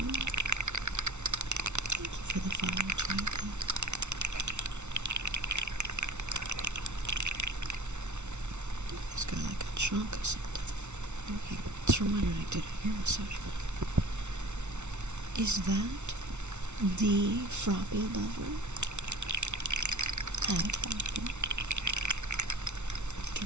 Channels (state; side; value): late; left; 0.82 ms